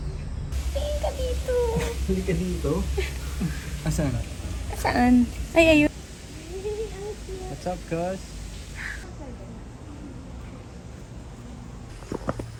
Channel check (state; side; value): identical; both; correlation 1.00